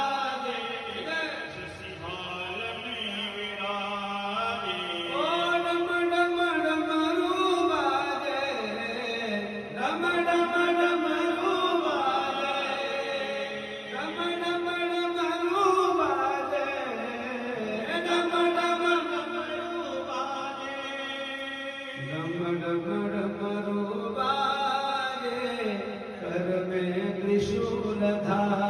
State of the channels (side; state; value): both; identical; correlation 1.00